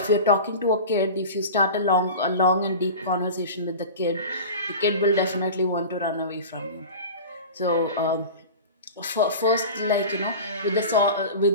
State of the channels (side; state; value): both; inverted; correlation -0.33